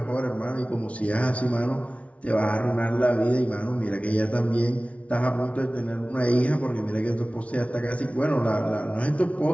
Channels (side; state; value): right; late; 0.064 ms